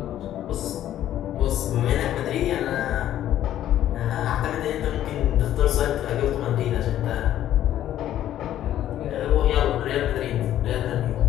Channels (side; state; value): right; quieter; 12.1 dB